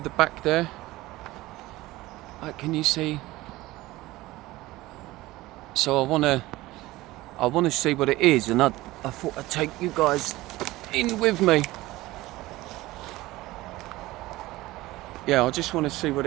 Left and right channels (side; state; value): left; quieter; 18.4 dB